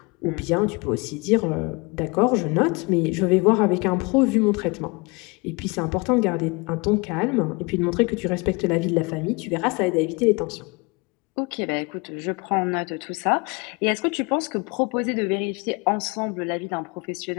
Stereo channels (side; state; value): right; quieter; 28.3 dB